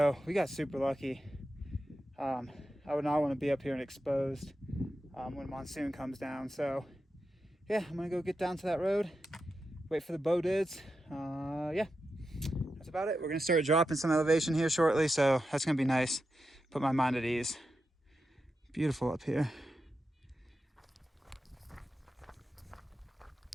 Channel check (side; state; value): both; normal; correlation 0.89